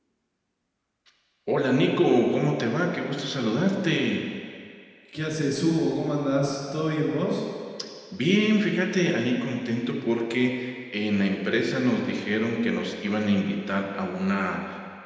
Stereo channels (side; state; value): both; identical; correlation 1.00